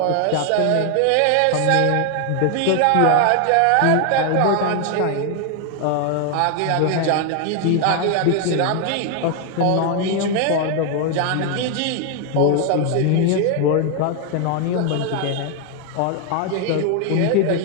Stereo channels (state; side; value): different; both; correlation 0.00